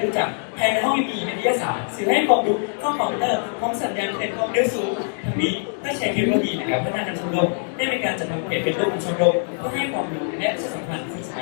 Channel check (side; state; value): right; silent; 63 dB below the other